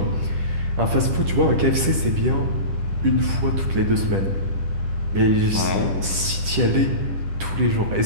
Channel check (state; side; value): late; left; 10 ms